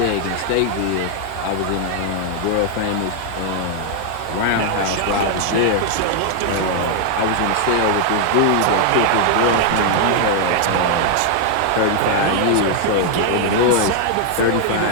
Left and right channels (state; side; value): different; both; correlation 0.00